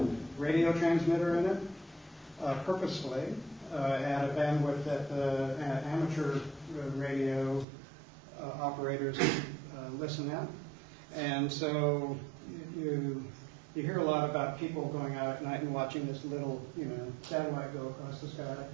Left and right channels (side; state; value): left; drops out; at 7.7 s